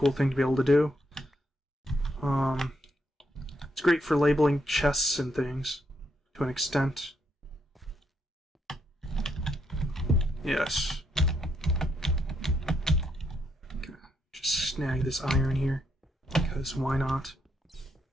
thing to be able to do. It's great for labeling chests and things, to an extent. Yes. Gonna just snag this iron here, because why not?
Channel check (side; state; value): both; normal; correlation 0.77